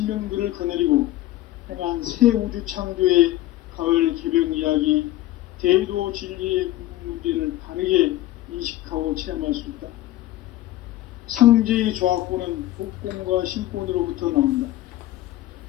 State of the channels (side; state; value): right; quieter; 15.3 dB